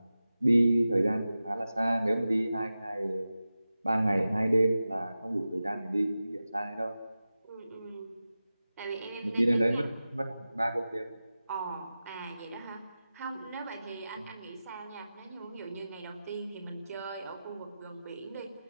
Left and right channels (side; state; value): both; inverted; correlation -0.94